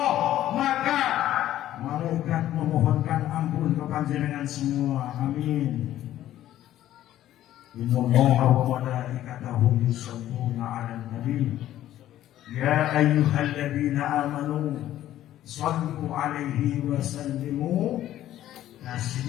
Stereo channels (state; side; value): quieter; right; 12.9 dB